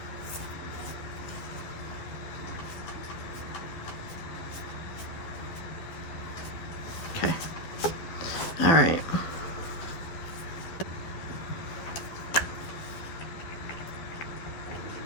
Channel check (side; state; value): right; late; 12 ms